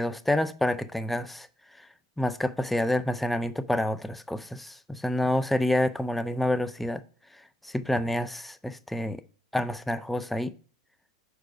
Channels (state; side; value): normal; both; correlation 0.90